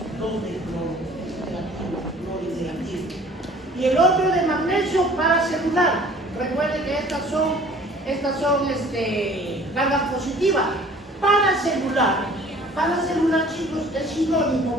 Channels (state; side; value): normal; both; correlation 0.51